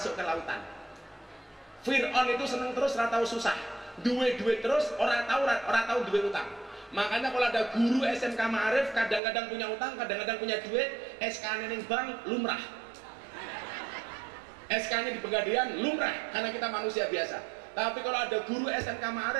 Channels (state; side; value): drops out; left; at 9.2 s